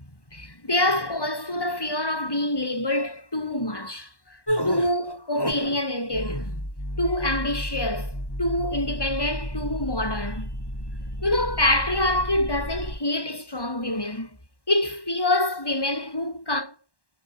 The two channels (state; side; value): late; right; 1.1 ms